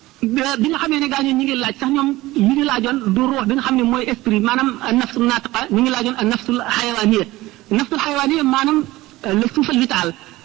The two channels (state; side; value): quieter; left; 18.3 dB